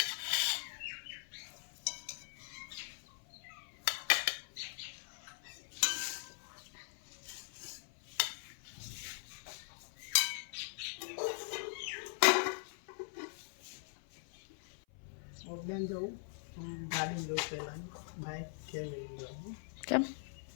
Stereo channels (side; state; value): right; silent; 50 dB below the other